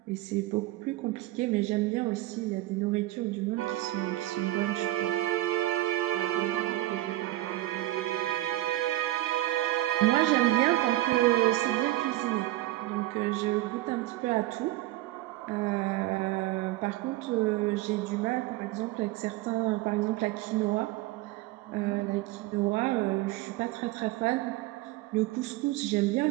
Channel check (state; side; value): quieter; left; 16.7 dB